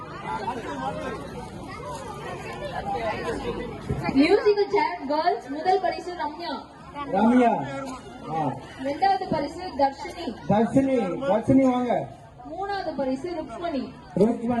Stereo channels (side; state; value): both; identical; correlation 1.00